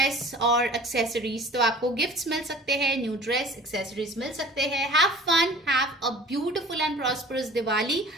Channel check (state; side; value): normal; both; correlation 0.46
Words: और एक्सेसरीज। तो आपको गिफ्ट्स मिल सकते हैं, न्यू ड्रेस, एक्सेसरीज मिल सकते हैं। Have fun, have a beautiful and prosperous Diwali.